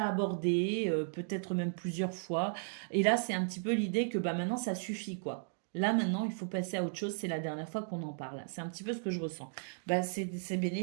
abordé, peut-être même plusieurs fois. Et là, c'est un petit peu l'idée que maintenant, ça suffit, quoi. Là, maintenant, il faut passer à autre chose. C'est la dernière fois qu'on en parle. C'est un petit peu ce que je ressens. C'est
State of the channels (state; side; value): silent; left; digital silence